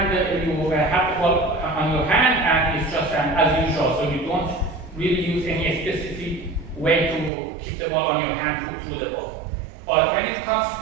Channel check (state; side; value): drops out; left; at 7.3 s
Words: you have the ball on your hand and it's just as usual. So you don't really use any specific way to keep the ball on your hand through the ball. But when it comes to